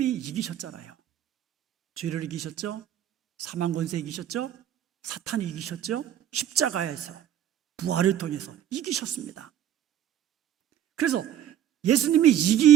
이기셨잖아요. 죄를 이기셨죠? 사망 권세 이기셨죠? 사탄이 이기셨죠? 십자가에서 부활을 통해서 이기셨습니다. 그래서 예수님이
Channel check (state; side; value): quieter; left; 10.8 dB